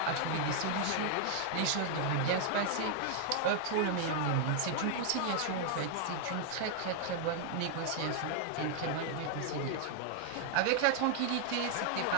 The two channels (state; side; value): different; both; correlation 0.00